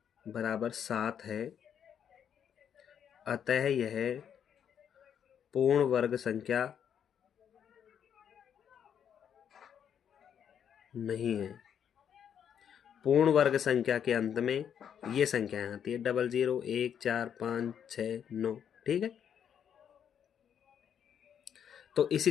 बराबर 7 है, अतः यह पूर्ण वर्ग संख्या नहीं है। पूर्ण वर्ग संख्या के अंत में ये संख्याएं आती है, 00, 1, 4, 5, 6, 9। ठीक है, तो इसी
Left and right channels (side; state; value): right; quieter; 8.5 dB